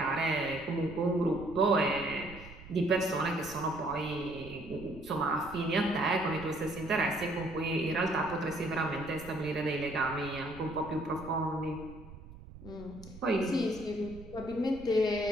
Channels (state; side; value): noise; right; rumble, 17 dB below the sound